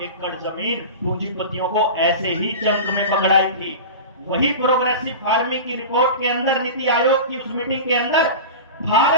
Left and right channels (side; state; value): both; inverted; correlation -0.30